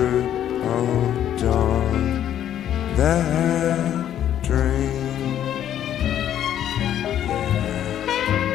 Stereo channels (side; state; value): right; quieter; 10.8 dB